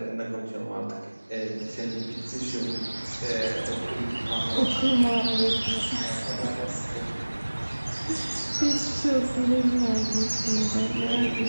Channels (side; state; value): both; inverted; correlation -1.00